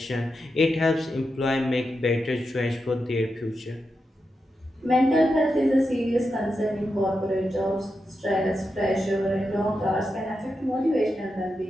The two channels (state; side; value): normal; both; correlation 0.87